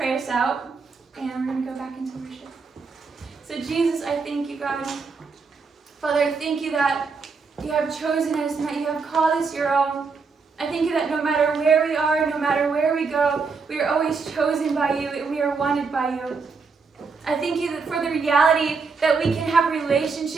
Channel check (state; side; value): quieter; left; 4.8 dB